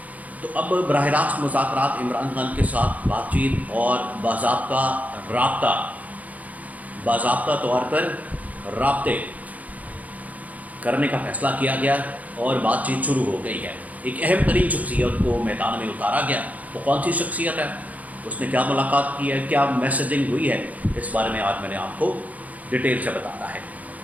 तो अब बराह रास्त मुज़ाकरात, इमरान खान के साथ बातचीत और बाज़ाब्ता तौर पर राब्ते करने का फ़ैसला किया गया और बातचीत शुरू हो गई है। एक अहम तरीन शख्सियत को मैदान में उतारा गया। तो कौन सी शख्सियत है, उसने क्या मुलाकात की है, क्या मैसेजिंग हुई है, इस बारे में आज मैंने आपको डिटेल से बताना है।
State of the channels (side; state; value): left; late; 0.075 ms